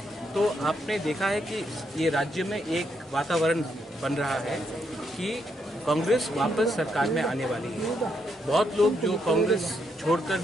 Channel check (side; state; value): both; normal; correlation 0.78